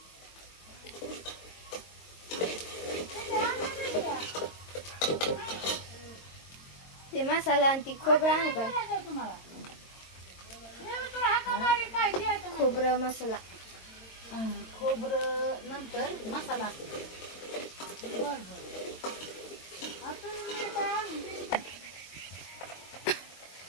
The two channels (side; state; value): right; late; 22 ms